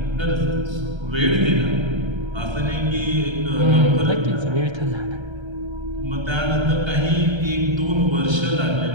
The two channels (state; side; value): late; left; 1.3 ms